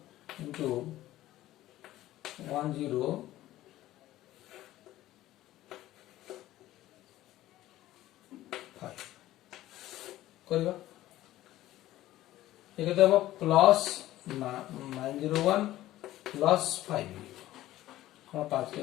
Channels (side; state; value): right; quieter; 15.1 dB